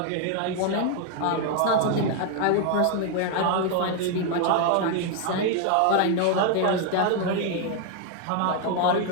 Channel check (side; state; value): both; different; correlation 0.00